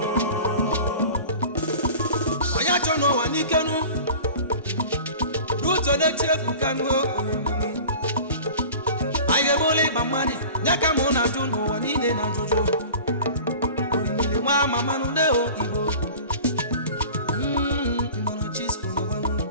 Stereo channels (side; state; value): both; inverted; correlation -0.39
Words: onye acho no wa nikenu ruto na chiefu kanu aye bole bamani nyaka mo na ju no wa nile na juju orimile wa mama no le o Igbo imono Chisco no wanu